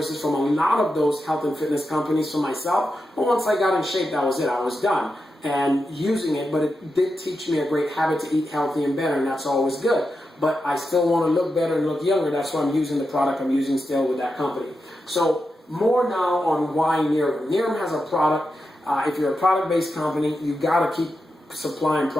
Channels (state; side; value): normal; both; correlation 0.88